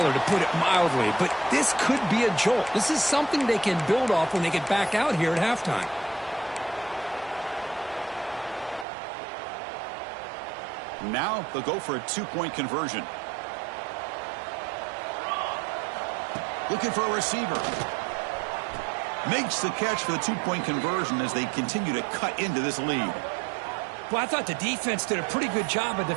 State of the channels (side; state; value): left; drops out; at 8.8 s